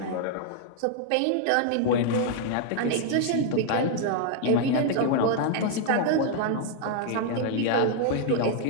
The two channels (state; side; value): different; both; correlation 0.00